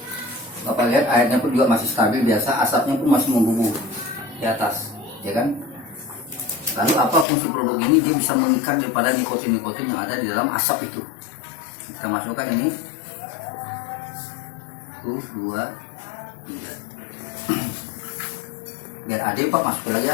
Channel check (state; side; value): drops out; right; at 7.2 s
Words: Bapak lihat airnya pun juga masih stabil biasa, asapnya pun masih membumbung di atas, ya kan? Lalu apa fungsi produk ini? Dia bisa mengikat daripada nikotin-nikotin yang ada di dalam asap itu. Kita masukkan ini. 1, 2, 3. Biar ada Pak masukin lagi